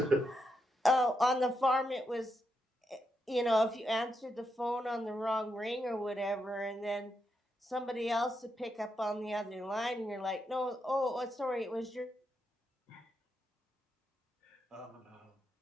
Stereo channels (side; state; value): both; normal; correlation 0.83